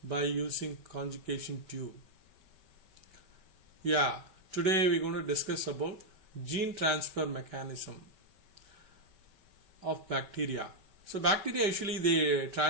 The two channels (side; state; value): left; late; 5.2 ms